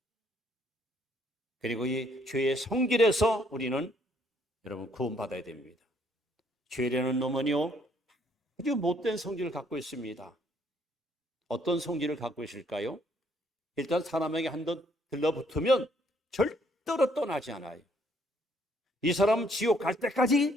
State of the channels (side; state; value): both; normal; correlation 0.67